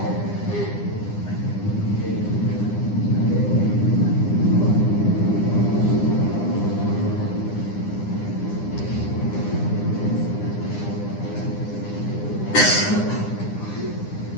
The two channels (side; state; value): right; late; 9.8 ms